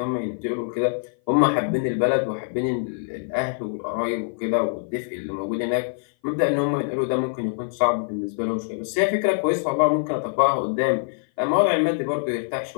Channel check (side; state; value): right; silent; 56 dB below the other